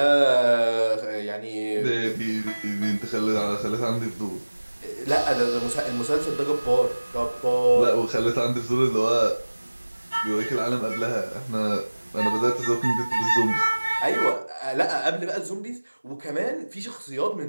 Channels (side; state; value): both; inverted; correlation -1.00